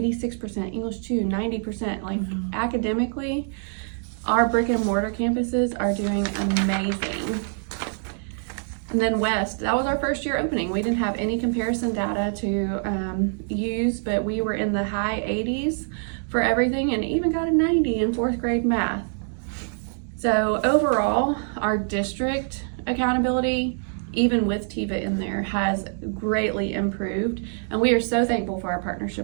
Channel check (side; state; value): left; silent; 62 dB below the other